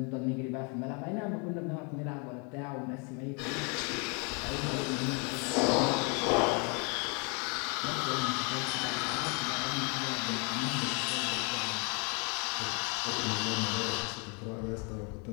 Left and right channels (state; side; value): quieter; right; 34.6 dB